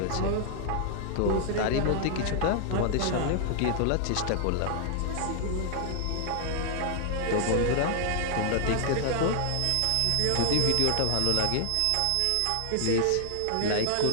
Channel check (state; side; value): different; both; correlation -0.01